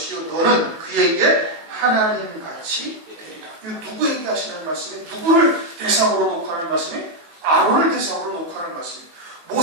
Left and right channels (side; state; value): left; late; 18 ms